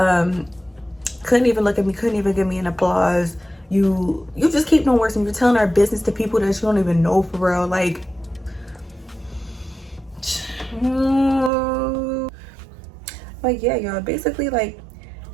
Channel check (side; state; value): left; drops out; at 11.5 s